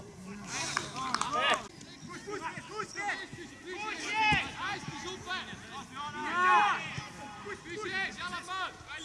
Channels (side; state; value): both; identical; correlation 1.00